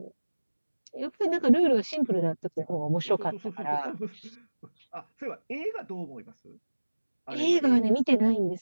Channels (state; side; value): inverted; both; correlation -1.00